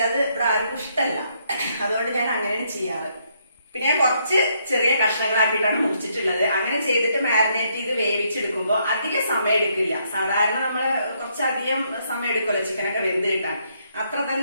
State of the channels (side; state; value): both; inverted; correlation -0.73